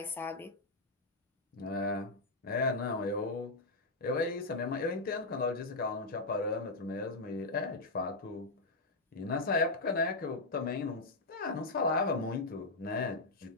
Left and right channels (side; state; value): right; quieter; 3.1 dB